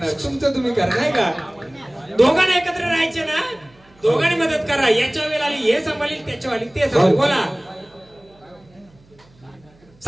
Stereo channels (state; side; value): noise; right; hum, 29 dB below the sound